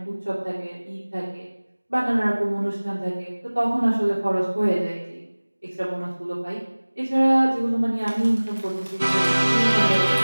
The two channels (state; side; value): inverted; both; correlation -1.00